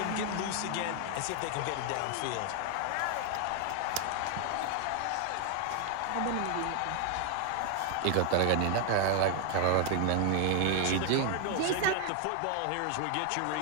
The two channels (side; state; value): both; different; correlation 0.00